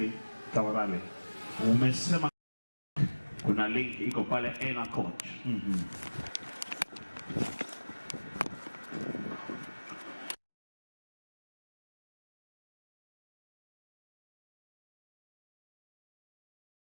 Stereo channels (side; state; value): both; inverted; correlation -1.00